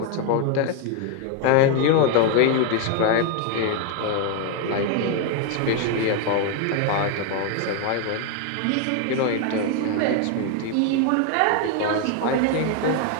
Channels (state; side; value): different; both; correlation 0.01